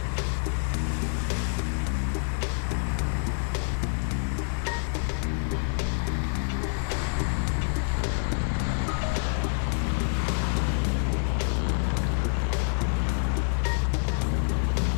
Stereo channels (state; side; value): silent; right; 60 dB below the other